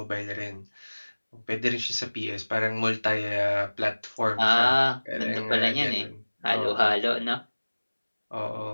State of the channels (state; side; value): inverted; both; correlation -1.00